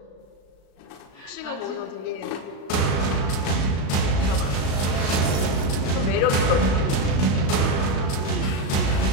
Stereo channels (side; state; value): right; late; 36 ms